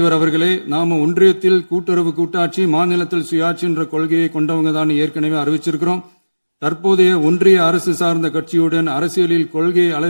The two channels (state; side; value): inverted; both; correlation -1.00